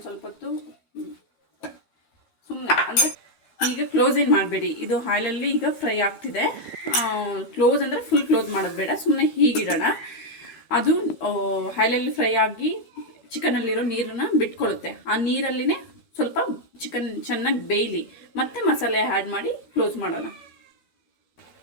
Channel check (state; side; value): late; right; 12 ms